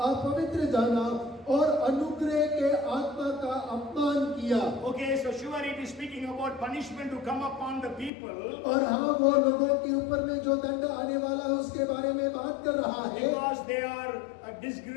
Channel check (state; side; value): drops out; right; at 8.1 s